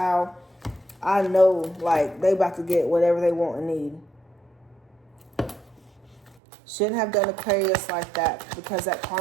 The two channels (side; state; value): left; drops out; at 6.4 s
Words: I know, like, they about to get whatever they want and need. Shouldn't have done Aquarius like that because that